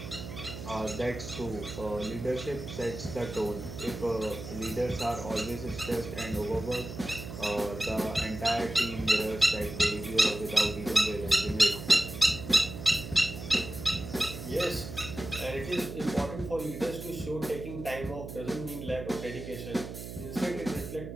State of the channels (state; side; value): noise; right; hum, 10 dB below the sound